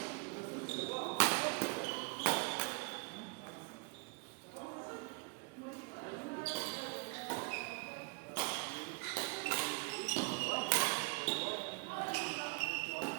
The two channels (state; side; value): quieter; left; 30.4 dB